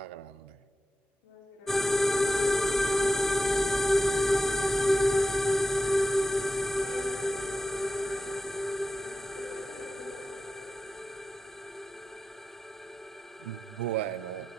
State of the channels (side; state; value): both; normal; correlation 0.90